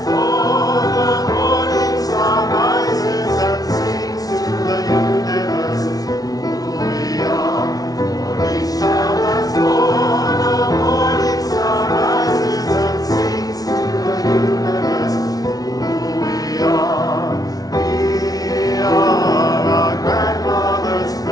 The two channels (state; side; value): late; right; 0.18 ms